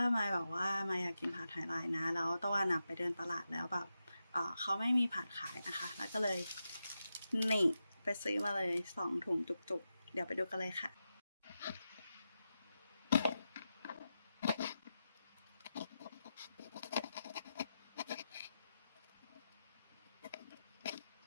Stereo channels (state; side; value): inverted; both; correlation -0.89